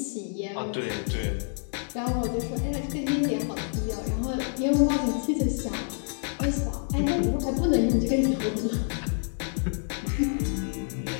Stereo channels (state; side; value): silent; right; 60 dB below the other